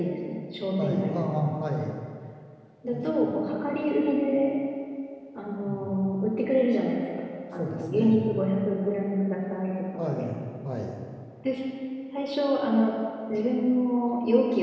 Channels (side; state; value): both; identical; correlation 1.00